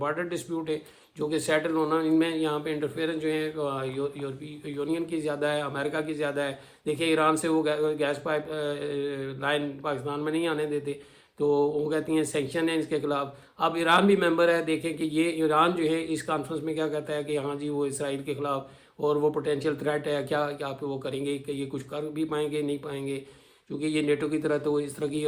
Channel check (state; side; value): identical; both; correlation 1.00